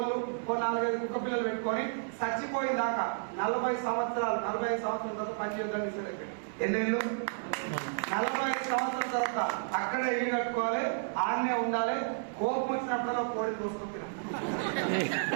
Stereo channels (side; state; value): left; silent; digital silence